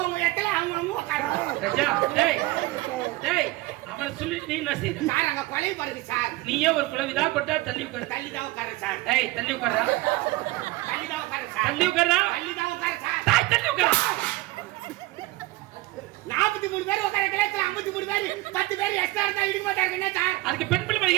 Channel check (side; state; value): left; quieter; 19.7 dB